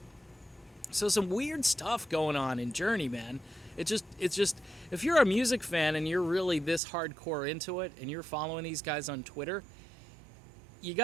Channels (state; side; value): drops out; left; at 6.8 s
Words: So some weird stuff going on in Journey, man. It's just if you're a music fan and you're really this hardcore into it and you're following these guys on Twitter, you